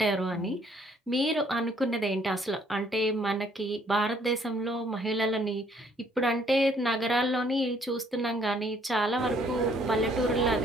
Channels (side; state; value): both; normal; correlation 0.64